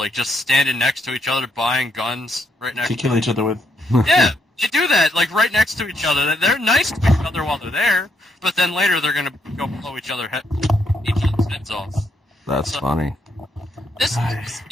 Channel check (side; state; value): both; normal; correlation 0.75